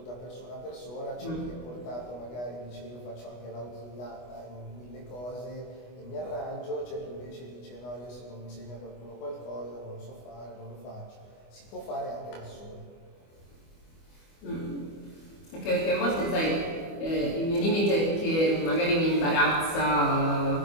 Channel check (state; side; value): late; right; 25 ms